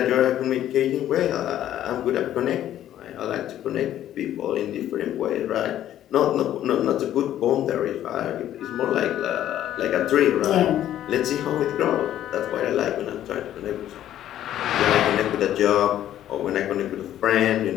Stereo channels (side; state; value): right; quieter; 11.9 dB